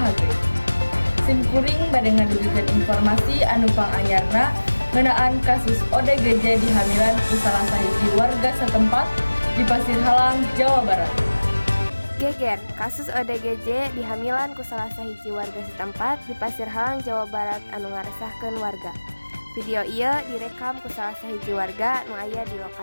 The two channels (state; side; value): inverted; both; correlation -1.00